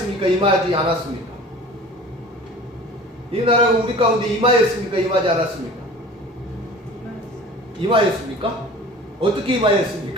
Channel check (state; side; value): normal; both; correlation 0.42